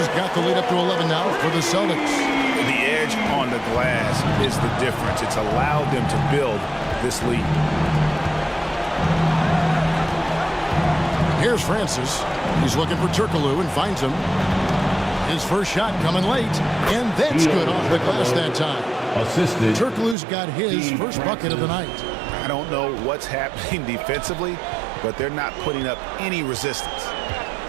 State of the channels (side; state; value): left; drops out; at 20.2 s